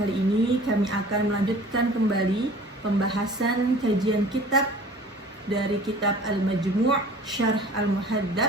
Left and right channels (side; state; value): both; normal; correlation 0.46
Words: ini kami akan melanjutkan kembali pembahasan kajian kitab dari kitab Al-Majmu' Syarh